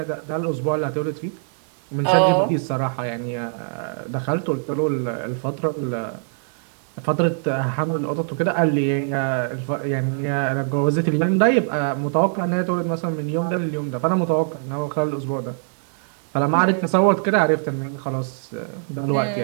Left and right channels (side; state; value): left; silent; digital silence